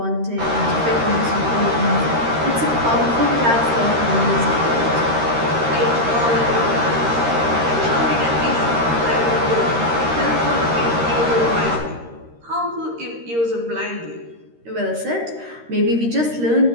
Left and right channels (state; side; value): late; left; 13 ms